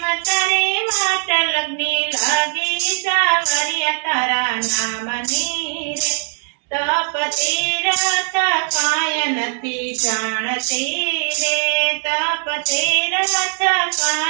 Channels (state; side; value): silent; left; 60 dB below the other